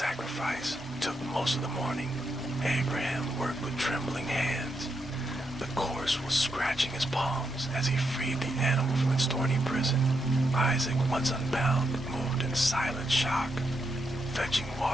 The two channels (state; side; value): normal; both; correlation 0.82